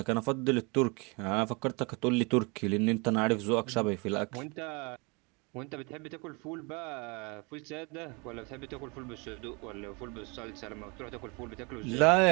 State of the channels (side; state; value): left; quieter; 30.0 dB